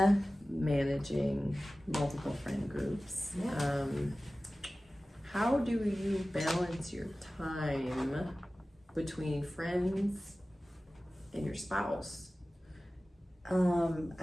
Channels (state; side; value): normal; both; correlation 0.97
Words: Managing multiple friend groups. Yeah. How do you balance your time between friends and your spouse?